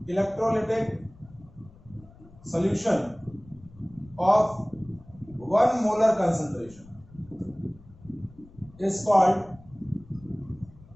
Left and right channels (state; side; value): noise; left; rumble, 23 dB below the sound